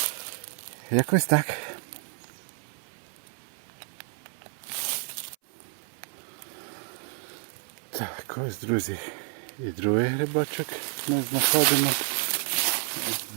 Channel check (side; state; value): left; silent; 58 dB below the other